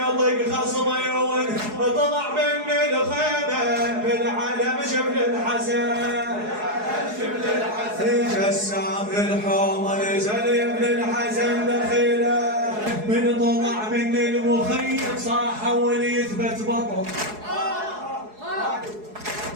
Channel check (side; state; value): left; late; 4.7 ms